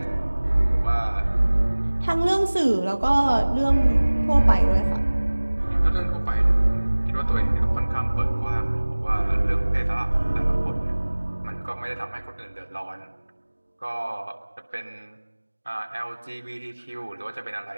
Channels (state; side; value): inverted; both; correlation -1.00